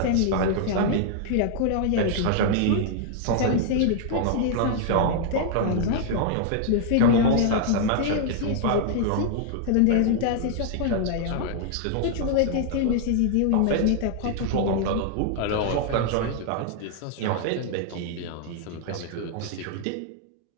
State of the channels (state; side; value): different; both; correlation -0.01